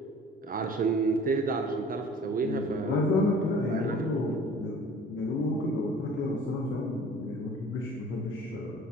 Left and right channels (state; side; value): normal; both; correlation 0.47